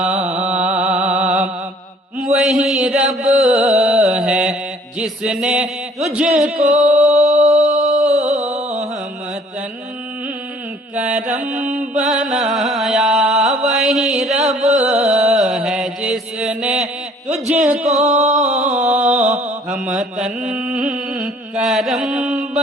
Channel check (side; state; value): both; normal; correlation 0.57